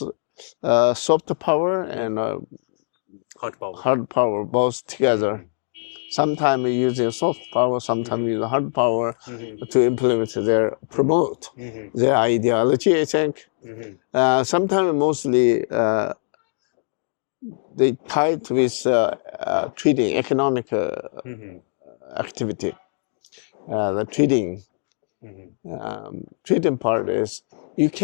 soft power and hard power both together. Sometimes using soft power, sometimes using hard power to implement promote their ideology, I think. Sometimes mostly they tied with trading, economic activity. The trading part is you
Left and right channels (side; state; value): right; silent; digital silence